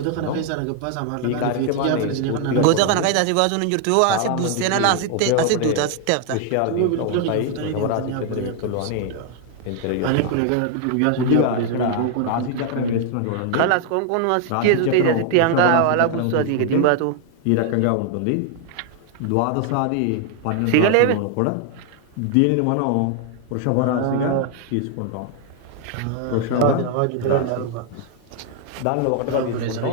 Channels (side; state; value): both; different; correlation 0.00